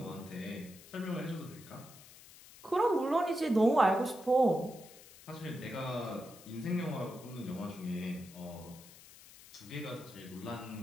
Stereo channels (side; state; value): left; noise; hiss, 20 dB below the sound